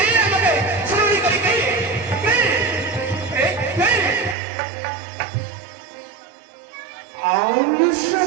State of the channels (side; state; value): left; drops out; at 4.4 s